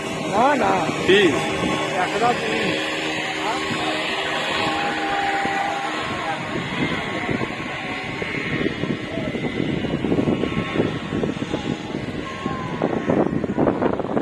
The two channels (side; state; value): both; identical; correlation 1.00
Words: না না, কি 100 টাকা তুমি।